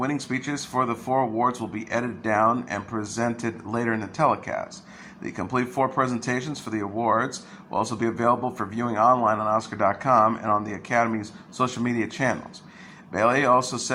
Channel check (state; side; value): identical; both; correlation 1.00